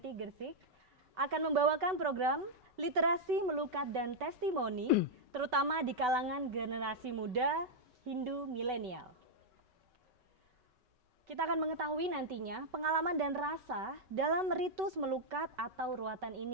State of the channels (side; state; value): left; late; 5.3 ms